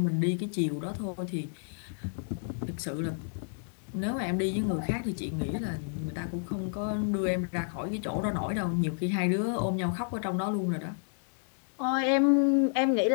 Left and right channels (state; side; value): silent; right; digital silence